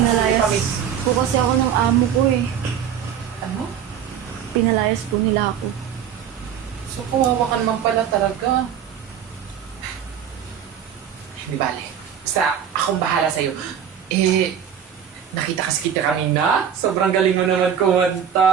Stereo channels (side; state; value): left; quieter; 8.8 dB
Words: po kasi ako ng amo ko eh. Ano? Pinalayas po nila ako. So, kawawa ka naman pala talaga. Di bale. Basta, akong bahala sa'yo. Eh, nakita kasi kita kanina. Sobrang galing mo naman